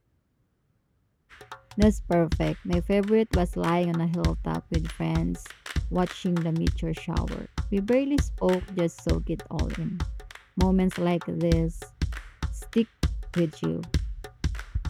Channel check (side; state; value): both; identical; correlation 1.00